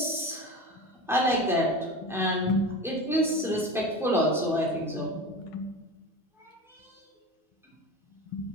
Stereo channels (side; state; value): both; normal; correlation 0.30